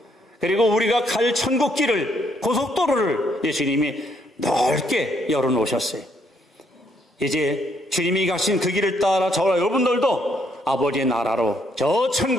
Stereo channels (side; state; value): both; normal; correlation 0.71